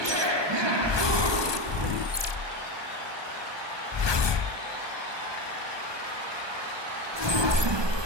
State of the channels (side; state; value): left; late; 1.2 ms